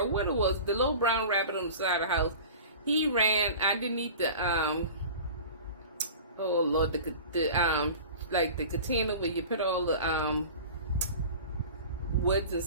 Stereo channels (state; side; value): inverted; both; correlation -0.38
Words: What it was, the little brown rabbit on the side of the house, he ran underneath the oh Lord, the like the container where you put all the woods and